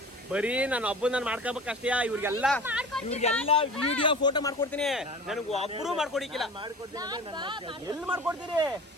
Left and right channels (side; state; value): both; normal; correlation 0.37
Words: ಬರೀ ನಾನು ಒಬ್ಬನ ಮಾಡ್ಕೋಬೇಕಷ್ಟೇ. ಇವ್ರಿಗೆಲ್ಲ ವಿಡಿಯೋ ಫೋಟೋ ಮಾಡ್ಕೊಡ್ತೀನಿ. ನನಗೆ ಒಬ್ಬರು ಮಾಡ್ಕೊಡಿಕ್ಕಿಲ್ಲ. ಎಲ್ಲಿ ಮಾಡ್ಕೊಡ್ತೀರಿ?